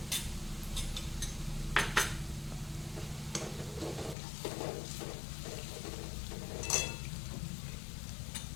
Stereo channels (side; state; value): right; drops out; at 4.2 s